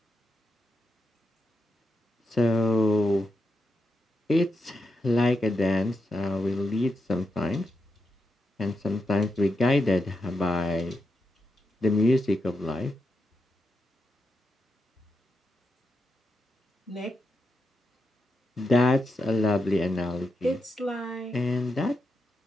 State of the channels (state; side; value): normal; both; correlation 0.85